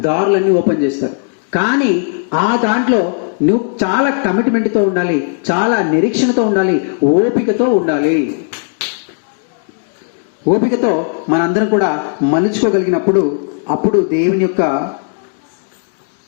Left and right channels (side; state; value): right; silent; 58 dB below the other